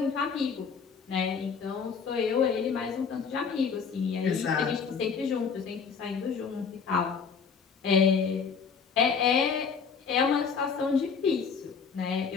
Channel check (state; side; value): quieter; right; 5.9 dB